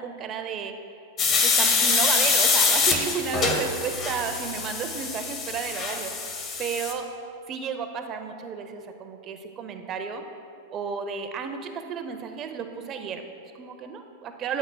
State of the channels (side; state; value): both; normal; correlation 0.37